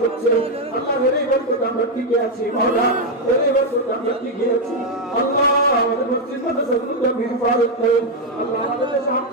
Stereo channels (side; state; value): both; normal; correlation 0.03